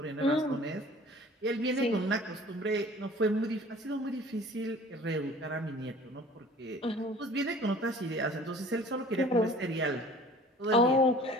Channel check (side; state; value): both; normal; correlation 0.47